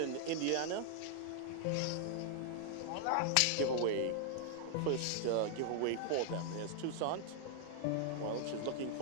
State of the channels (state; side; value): different; both; correlation -0.01